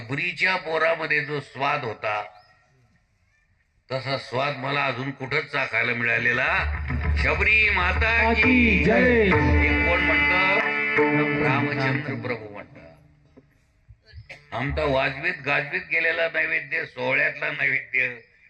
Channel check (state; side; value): identical; both; correlation 1.00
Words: पोरामध्ये जो स्वाद होता तसा स्वाद मला अजून कुठंच चाखायला मिळालेला. शबरी माता की जय. हे कोण म्हणतं? रामचंद्र प्रभू म्हणतात. आमचा वाजवीत गाजवीत गेलेला नैवेद्य, सोहळ्यातला नैवेद्य,